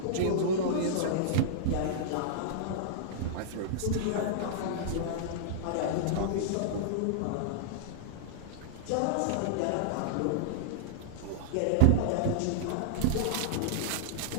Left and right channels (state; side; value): different; both; correlation -0.01